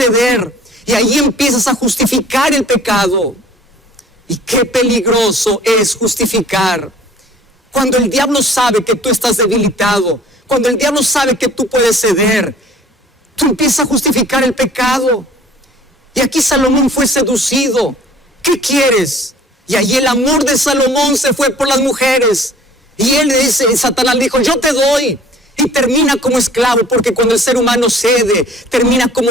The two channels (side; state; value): both; normal; correlation 0.52